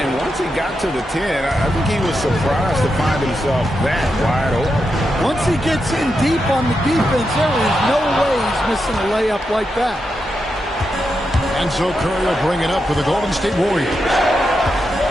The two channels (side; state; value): both; normal; correlation 0.86